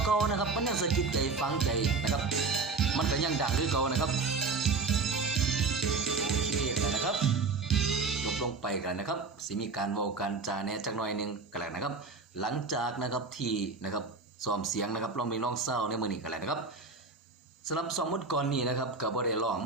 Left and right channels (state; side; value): quieter; left; 4.2 dB